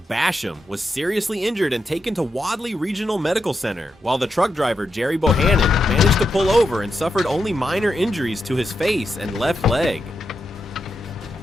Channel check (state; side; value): normal; both; correlation 0.85